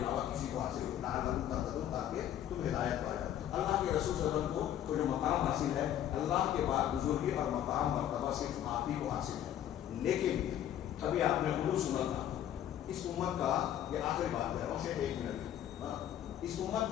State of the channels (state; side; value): quieter; right; 11.0 dB